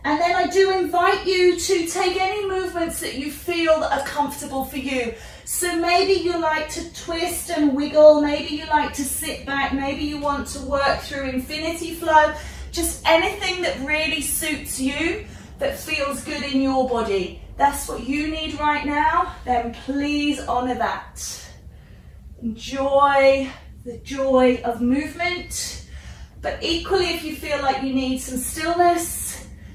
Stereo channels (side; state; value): both; identical; correlation 1.00